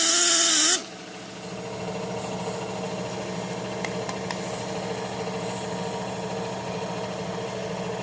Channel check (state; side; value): identical; both; correlation 1.00